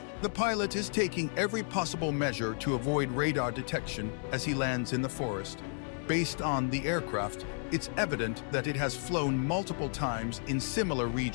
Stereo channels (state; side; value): silent; right; 56 dB below the other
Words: The pilot is taking every possible measure to avoid radar detection as he lands in the forest. Based on the aircraft, it's evident that it has flown multiple times in similar